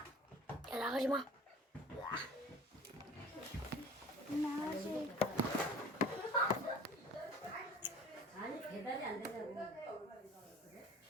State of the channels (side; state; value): both; normal; correlation 0.44